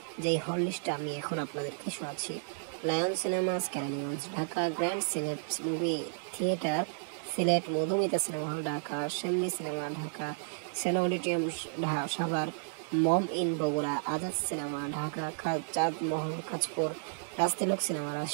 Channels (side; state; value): left; silent; digital silence